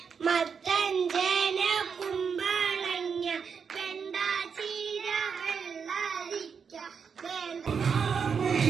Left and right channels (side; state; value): left; quieter; 6.3 dB